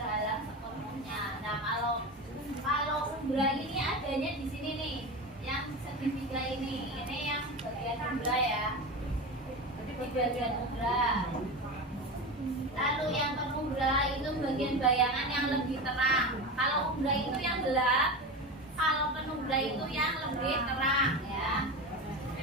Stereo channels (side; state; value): both; normal; correlation 0.24